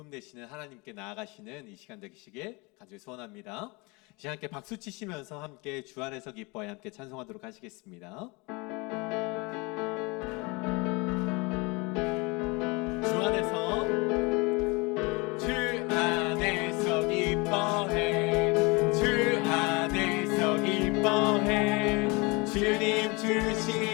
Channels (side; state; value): right; quieter; 27.0 dB